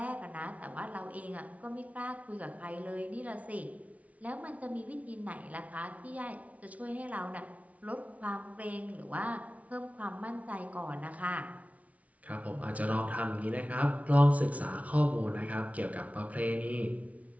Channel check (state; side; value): late; left; 0.068 ms